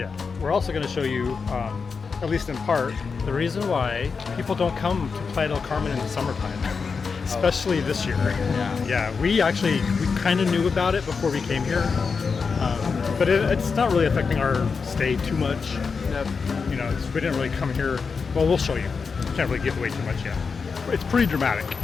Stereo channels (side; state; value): right; quieter; 5.2 dB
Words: We're also going to show you, at least in part, the reason why people don't come to Playa del Carmen in the summertime, especially this year. Yeah. We kind of knew about it before we came here, but it's not really affecting our stay too much. Nope. You know, we didn't really come here. Well, we'll show you. Can't really give away too much yet. It's pretty dramatic,